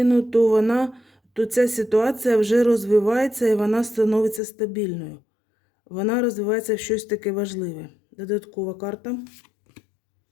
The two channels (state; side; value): drops out; right; at 4.4 s